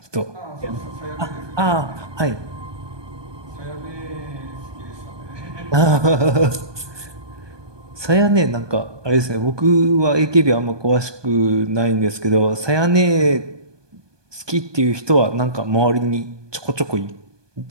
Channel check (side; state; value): left; late; 1.2 ms